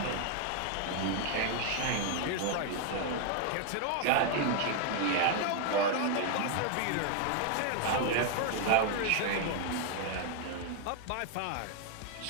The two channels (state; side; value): different; both; correlation 0.00